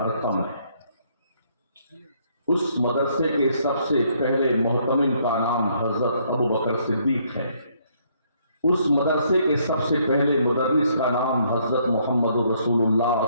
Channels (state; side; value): inverted; both; correlation -0.68